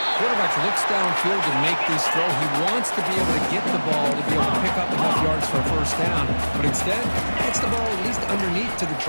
Quarterback looks downfield to make this throw. He wants to be able to get the ball to be able to pick up enough yards for a first down, but instead gets the ball at least underneath to the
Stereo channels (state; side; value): inverted; both; correlation -1.00